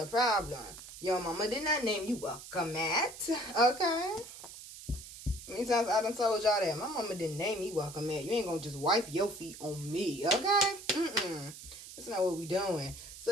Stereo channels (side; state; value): right; noise; hiss, 14 dB below the sound